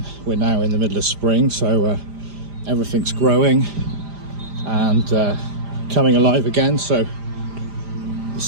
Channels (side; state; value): left; late; 5.0 ms